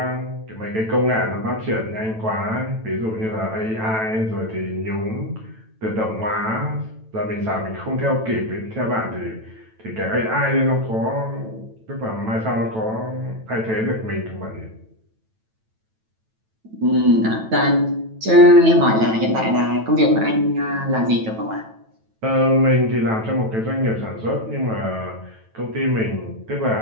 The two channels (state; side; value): late; left; 9.1 ms